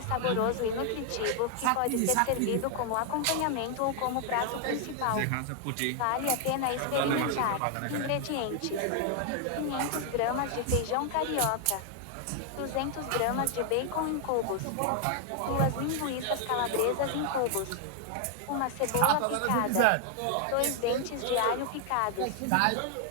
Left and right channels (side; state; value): both; different; correlation 0.00